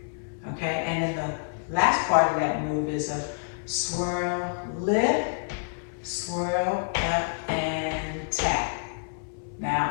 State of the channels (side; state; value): right; silent; digital silence